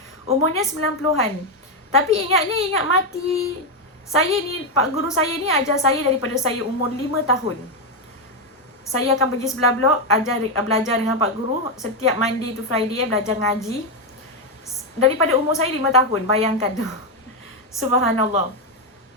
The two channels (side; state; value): both; normal; correlation 0.05